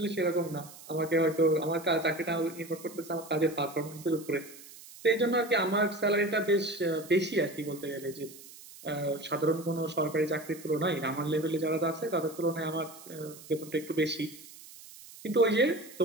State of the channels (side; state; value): right; noise; hiss, 18 dB below the sound